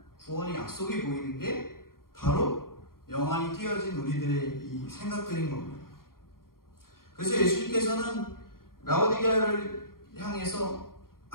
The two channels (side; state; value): right; late; 0.92 ms